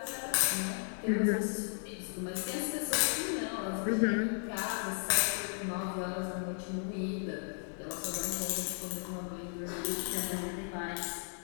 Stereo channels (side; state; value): right; silent; 54 dB below the other